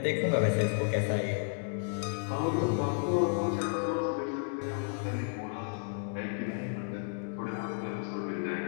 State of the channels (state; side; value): silent; right; digital silence